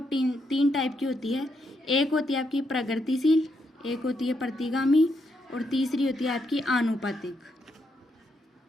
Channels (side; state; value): both; normal; correlation 0.79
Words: तीन टाइप की होती है। एक होती है आपकी प्रगतिशील, एक होती है प्रतिगामी और तीसरी होती है आपकी आनुपातिक।